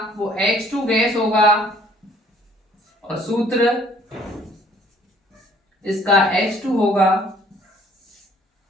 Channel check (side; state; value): both; normal; correlation 0.59